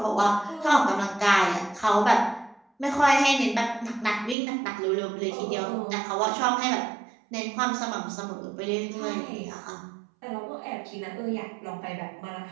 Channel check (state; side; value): drops out; left; at 4.4 s